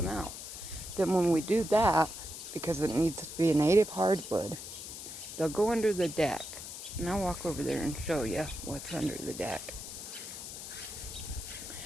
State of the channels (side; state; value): left; noise; hiss, 10 dB below the sound